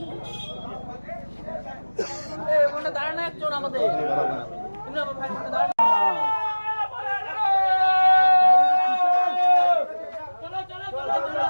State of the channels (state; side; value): inverted; both; correlation -1.00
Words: দাঁড়ানো একজন আমাদের